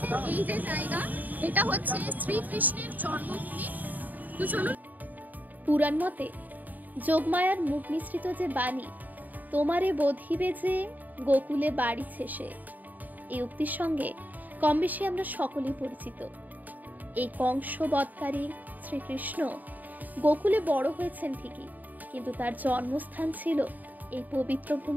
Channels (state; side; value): late; left; 0.083 ms